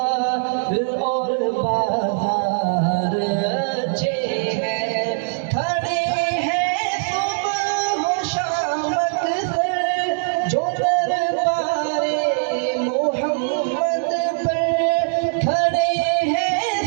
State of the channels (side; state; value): left; silent; 62 dB below the other